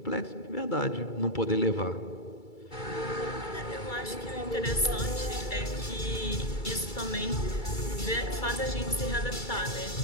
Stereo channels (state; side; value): late; right; 2.3 ms